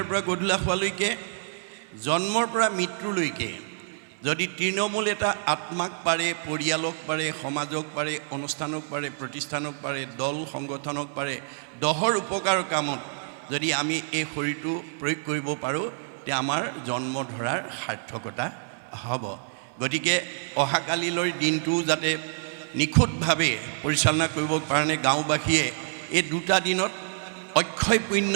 পৰা গধূলা হোৱালৈকে, জন্মৰ পৰা মৃত্যুলৈকে যদি তৃণমূল এটা আত্মাক পাৰে, পৰিয়ালক পাৰে, সমাজক পাৰে, অনুষ্ঠানক পাৰে, প্ৰতিষ্ঠানক পাৰে, দল সংগঠনক পাৰে, দহৰ উপকাৰ কামত যদি আমি এই শৰীৰটো প্ৰয়োগ কৰিব পাৰোঁ, তেতিয়া আমাৰ জন্ম ধৰাৰ সাৰ্থকতা হ'ব। গতিকে অহাকালিলৈ দিনটো যাতে নিখুঁতভাৱে পৰিচালনা কৰিবৰ কাৰণে গাঁওবাসীয়ে এই দুটা দিনত অক্ষয় পুণ্য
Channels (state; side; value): silent; left; 57 dB below the other